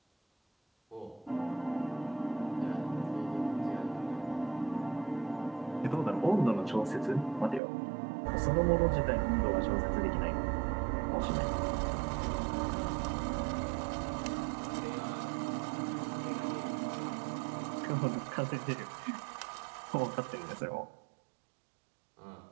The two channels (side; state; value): left; drops out; at 7.6 s